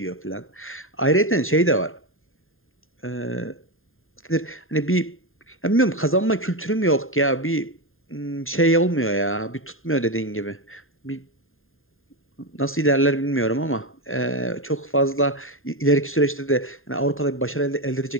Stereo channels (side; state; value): right; late; 0.60 ms